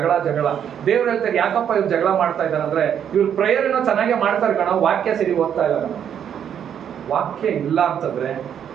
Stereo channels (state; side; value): quieter; left; 8.8 dB